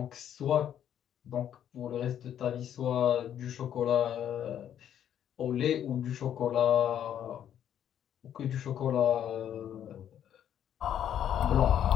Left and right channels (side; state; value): right; quieter; 10.0 dB